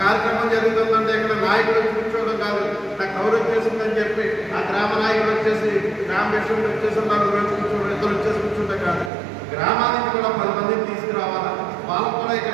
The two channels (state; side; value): drops out; left; at 9.1 s